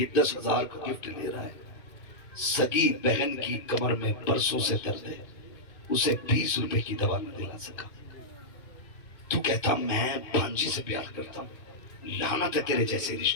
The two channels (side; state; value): right; late; 2.7 ms